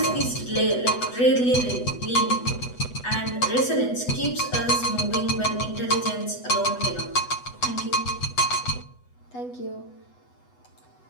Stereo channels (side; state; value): right; late; 8.1 ms